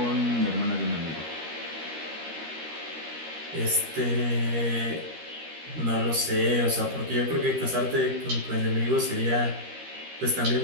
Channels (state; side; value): late; left; 13 ms